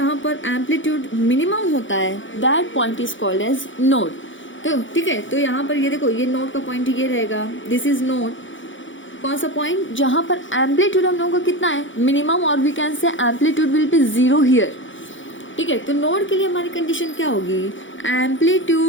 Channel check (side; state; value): right; late; 0.56 ms